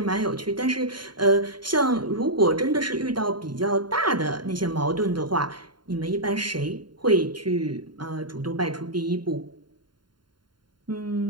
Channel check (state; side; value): late; left; 0.71 ms